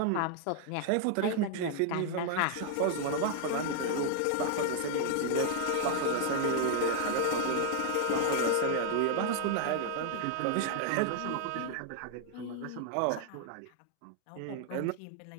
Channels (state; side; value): different; both; correlation 0.00